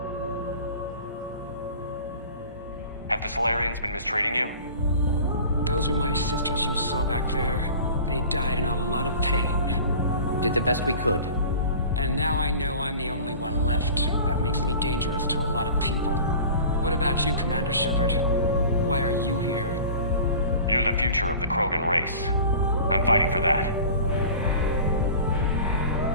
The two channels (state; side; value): inverted; both; correlation -0.41